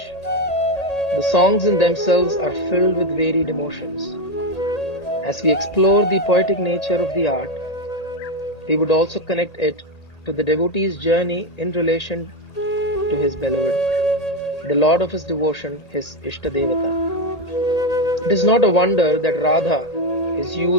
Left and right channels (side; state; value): right; late; 1.8 ms